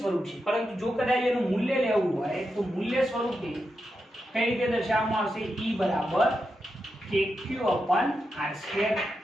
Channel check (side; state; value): both; normal; correlation 0.87